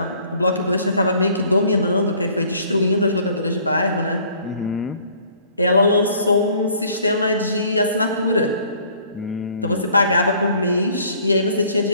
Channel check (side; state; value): both; inverted; correlation -0.57